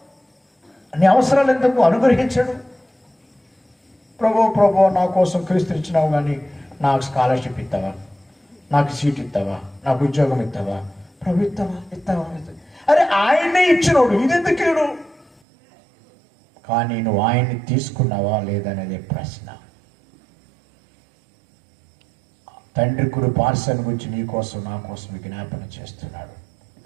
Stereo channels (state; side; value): drops out; left; at 15.3 s